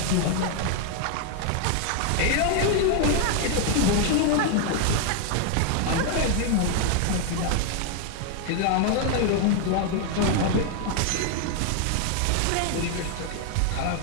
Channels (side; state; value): both; different; correlation 0.00